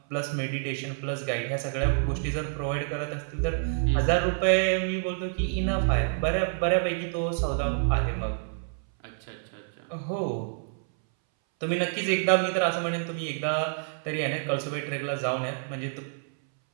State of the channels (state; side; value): silent; left; 59 dB below the other